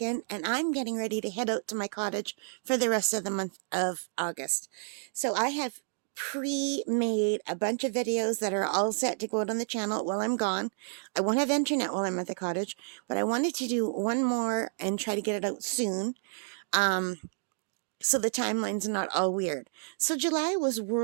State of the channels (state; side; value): silent; left; digital silence